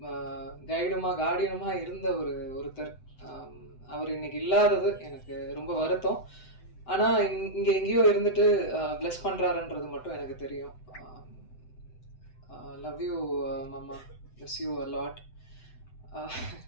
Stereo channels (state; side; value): late; right; 7.9 ms